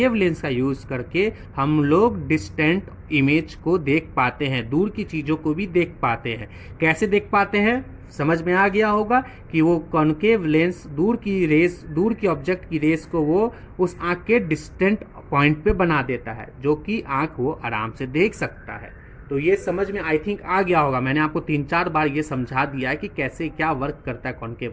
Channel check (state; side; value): identical; both; correlation 1.00